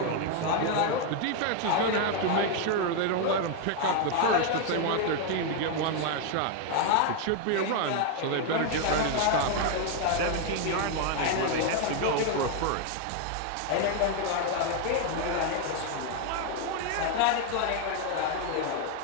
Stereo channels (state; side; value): different; both; correlation 0.00